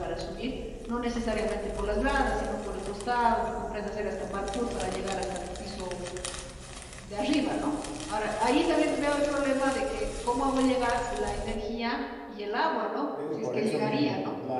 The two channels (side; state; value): both; identical; correlation 1.00